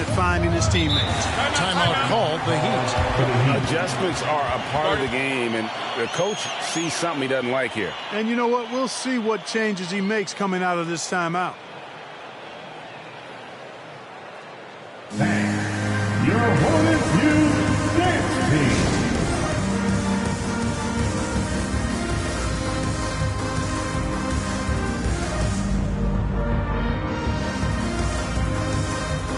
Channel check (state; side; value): identical; both; correlation 1.00